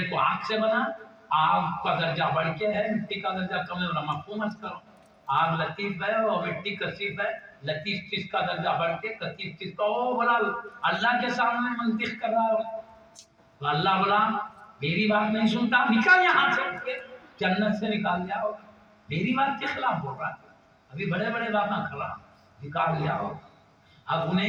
کو آگ سے بنا۔ آگ کا درجہ بڑھ کے ہے، مٹی کا درجہ کم ہے، مفہوم مت کرو۔ آگ لطیف ہے اور مٹی کثیف ہے، لطیف چیز کا درجہ بڑھ کے کثیف چیز کا، او بولا اللہ کے سامنے منطق کر رہا ہے۔ تو اللہ بولا میری بات نہیں سنتا، نکل یہاں سے، جنت سے نکال لیا ہو، میری بات کے خلاف بول رہا ہے، ابھی بڑے بڑے باتیں کر رہا، نکال لیا ہو۔ اب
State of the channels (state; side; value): identical; both; correlation 1.00